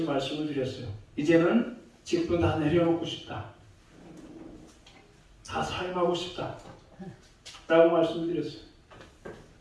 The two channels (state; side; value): identical; both; correlation 1.00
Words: 말씀을 드렸어요. 이제는 직분 다 내려놓고 싶다. 다 사임하고 싶다. 라고 말씀을 드렸어요.